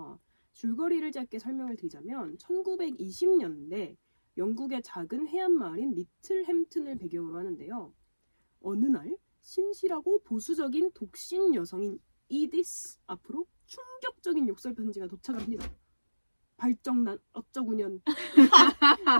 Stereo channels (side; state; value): both; inverted; correlation -1.00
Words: 줄거리를 짧게 설명을 드리자면 1920년대 영국의 작은 해안 마을인 리틀 햄튼을 배경으로 하는데요. 어느 날 신실하고 보수적인 독신 여성인 이디스 앞으로 충격적인 욕설 편지가 도착을 합니다. 발정난 어쩌구년